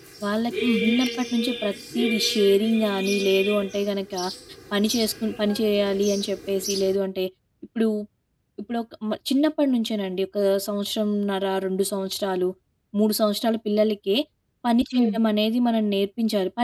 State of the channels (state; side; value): identical; both; correlation 1.00